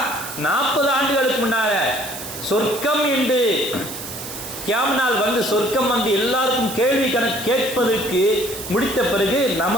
40 ஆண்டுகளுக்கு முன்னால சொர்க்கம் என்று கியாமனால் வந்து சொர்க்கம் வந்து எல்லாருக்கும் கேள்வி கணக்கு கேட்பதற்கு முடித்த பிறகு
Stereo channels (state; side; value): noise; right; hiss, 10 dB below the sound